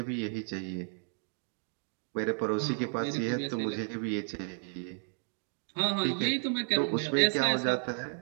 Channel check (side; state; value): left; silent; 56 dB below the other